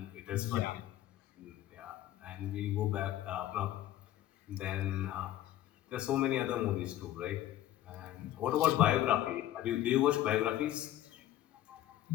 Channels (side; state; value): right; quieter; 13.3 dB